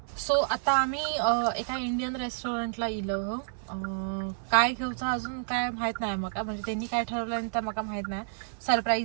सो आता आम्ही एका इंडियन रेस्टॉरंटला इलो. काय घेऊचं अजून काय माहीत नाही मका, म्हणजे त्यांनी काय ठरवलं तर मका माहीत नाही,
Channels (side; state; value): left; silent; digital silence